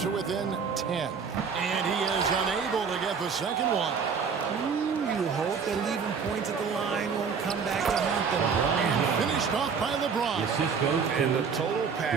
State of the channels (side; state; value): left; quieter; 6.0 dB